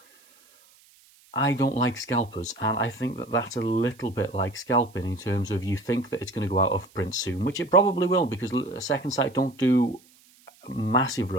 I don't like scalpers, and I think that that's a little bit like scalping in terms of you think that it's going to go out of print soon, which it probably will, because Second Sight don't do massive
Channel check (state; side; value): noise; right; hiss, 29 dB below the sound